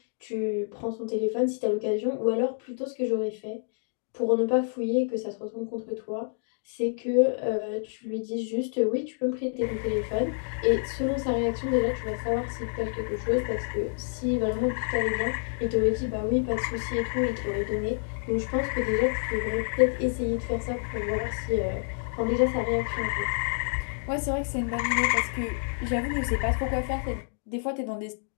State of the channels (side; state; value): right; silent; 59 dB below the other